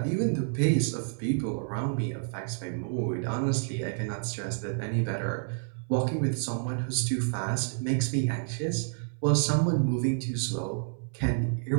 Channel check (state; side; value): silent; left; 58 dB below the other